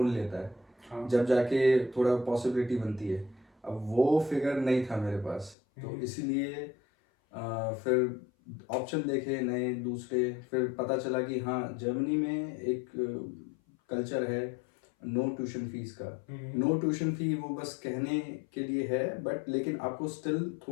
लेता है, हाँ। जब जाके थोड़ा पॉसिबिलिटी बनती है। अब वो फिगर नहीं था मेरे पास, तो इसीलिए फिर ऑप्शन देखे नए दूसरे। फिर पता चला कि हाँ, जर्मनी में एक कल्चर है नो ट्यूशन फीस का। नो ट्यूशन फी वो बस कहने के लिए है, बट लेकिन आपको स्टिल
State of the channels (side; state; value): right; drops out; at 5.6 s